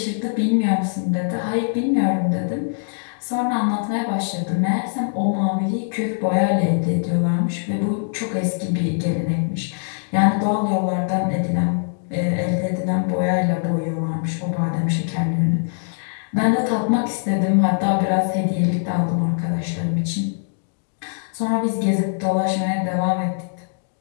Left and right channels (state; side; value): silent; right; digital silence